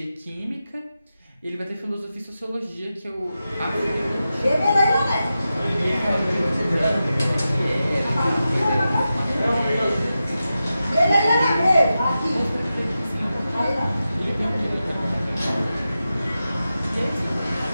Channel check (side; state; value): both; inverted; correlation -0.91